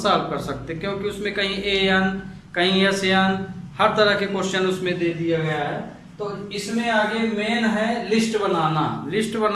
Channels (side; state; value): both; identical; correlation 1.00